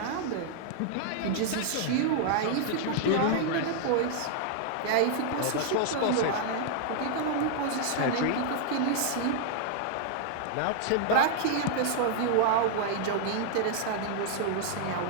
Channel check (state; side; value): different; both; correlation 0.00